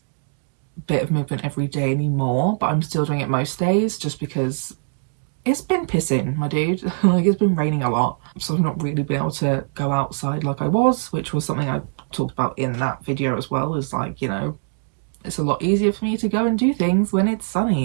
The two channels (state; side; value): silent; left; digital silence